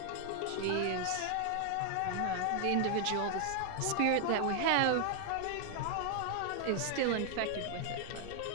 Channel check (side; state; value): both; different; correlation 0.00